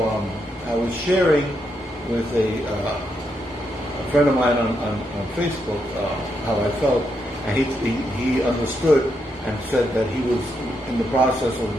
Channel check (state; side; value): normal; both; correlation 0.80